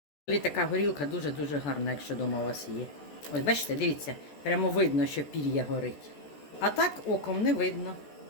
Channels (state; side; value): late; right; 14 ms